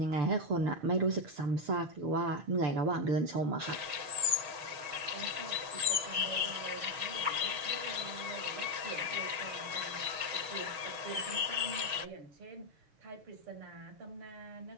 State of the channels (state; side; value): late; left; 6.4 ms